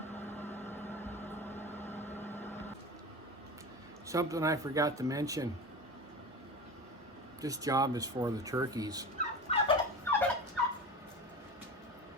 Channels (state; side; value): normal; both; correlation 0.30